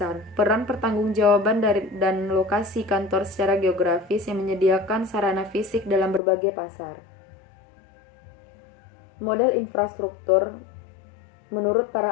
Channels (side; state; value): right; drops out; at 6.2 s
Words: peran pertanggungjawaban dan lokasi kantor secara geografis yang menyediakan sarana fisik dalam berbagai pasar. Modal infrastruktur menurut